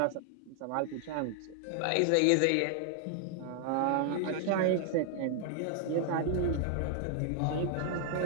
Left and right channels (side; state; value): both; different; correlation 0.00